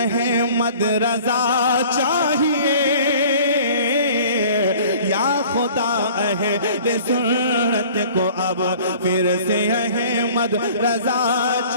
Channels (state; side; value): inverted; both; correlation -0.49